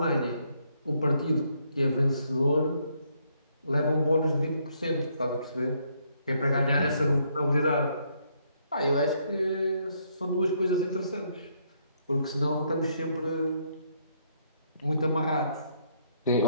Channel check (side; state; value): both; inverted; correlation -0.71